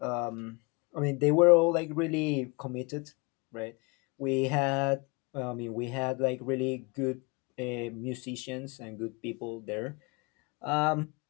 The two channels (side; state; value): right; quieter; 28.9 dB